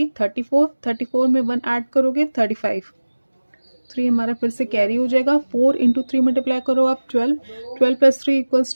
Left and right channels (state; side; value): inverted; both; correlation -1.00